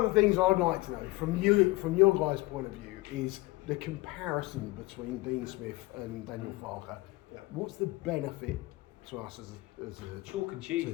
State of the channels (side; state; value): right; quieter; 21.2 dB